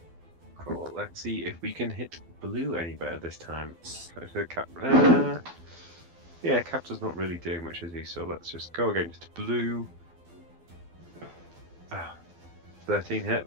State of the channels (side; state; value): left; late; 12 ms